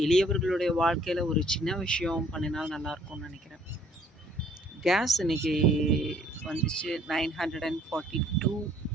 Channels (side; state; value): both; normal; correlation 0.60